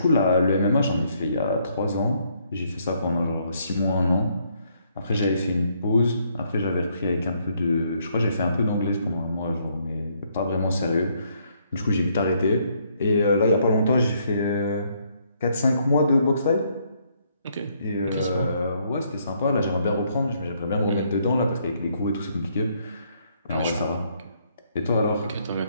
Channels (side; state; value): both; inverted; correlation -0.70